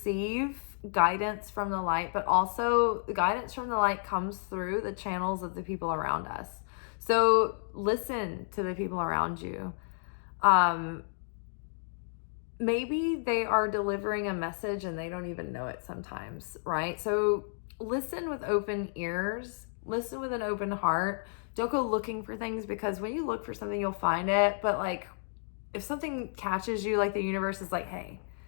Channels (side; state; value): right; silent; digital silence